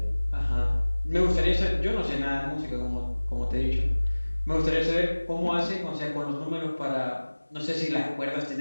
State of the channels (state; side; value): inverted; both; correlation -1.00